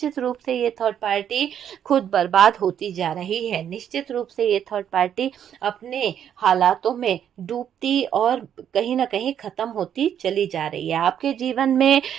रूप से ये थर्ड पार्टी खुद बर्बाद होती जा रही है। निश्चित रूप से ये थर्ड पार्टी अपने हालातों में डूबती और कहीं ना कहीं खत्म होती चली जा रही है। आपके जीवन में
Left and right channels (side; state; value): left; quieter; 9.3 dB